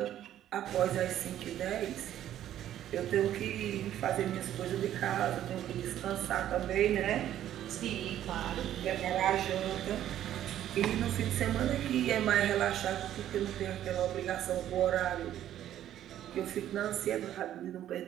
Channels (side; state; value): left; quieter; 11.7 dB